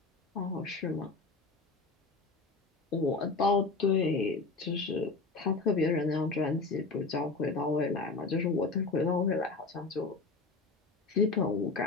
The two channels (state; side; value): quieter; right; 4.0 dB